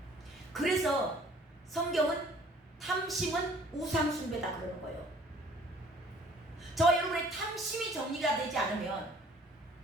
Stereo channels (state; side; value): normal; both; correlation 0.55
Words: 그래서 성경은 탐심은 우상 숭배다 그러는 거예요. 저와 여러분의 탐심이 정리가 되지 않으면